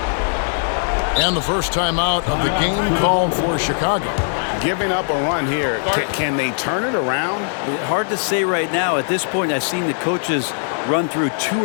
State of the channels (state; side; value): silent; right; digital silence